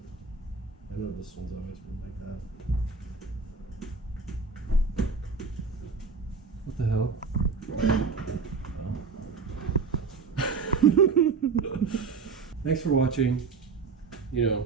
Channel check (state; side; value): quieter; left; 4.9 dB